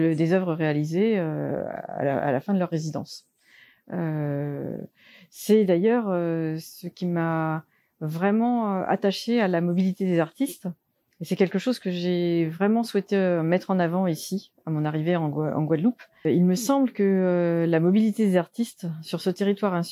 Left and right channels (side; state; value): both; identical; correlation 1.00